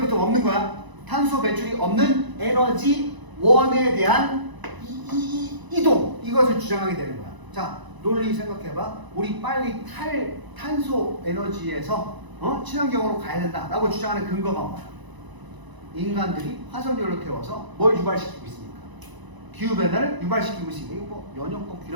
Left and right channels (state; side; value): late; left; 1.0 ms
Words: 없는 거야. 탄소 배출이 없는 에너지 원에 대한 이동, 이것을 주장하게 되는 거야. 자, 논리 생각해봐. 우리 빨리 탄소 에너지에서 친환경으로 가야 된다라고 주장하는 근거가 뭐야? 인간들이 화석연료 태워서 뭘 유발시키고 있습니까? 기후변화를 유발시키고 있으니까. 이거 뭐 연역법,